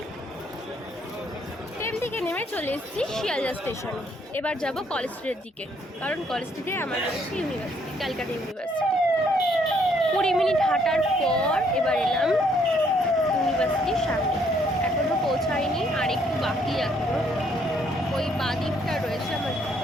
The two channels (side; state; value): both; normal; correlation 0.68